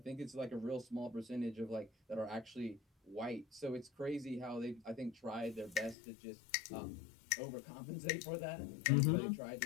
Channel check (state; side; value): drops out; right; at 6.0 s